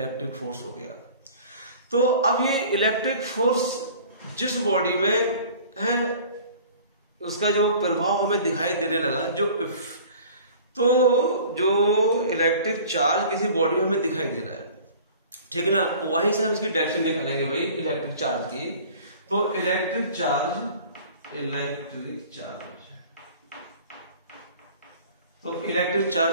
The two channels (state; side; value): inverted; both; correlation -0.46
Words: फोर्स हो गया। तो अब ये इलेक्ट्रिक फोर्स जिस बॉडी में है उसका जो प्रभाव हमें दिखाई देने लगा, तो जो इलेक्ट्रिक चार्ज किसी बॉडी में हमें दिखाई दे रहा है, ठीक है ना, वहीं से हम इसकी डायरेक्शन निकालेंगे भाई इलेक्ट्रिक चार्ज की। तो इलेक्ट्रिक चार्ज तो इलेक्ट्रिक